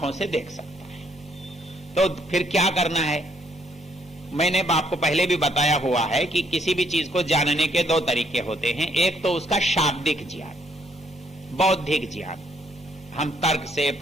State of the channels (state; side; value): normal; both; correlation 0.69